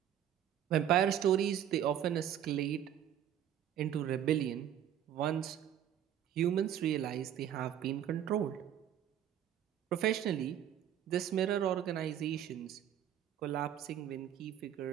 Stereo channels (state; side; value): quieter; left; 10.4 dB